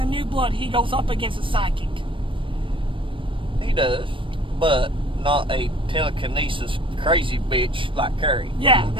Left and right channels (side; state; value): left; late; 0.25 ms